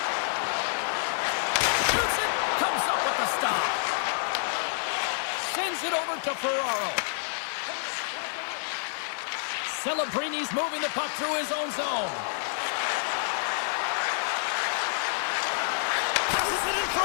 Shoots it. Comes up with the stop. Sends it over to Ferraro. Celebrini's moving the puck through his own zone. Passes it in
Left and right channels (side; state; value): right; silent; digital silence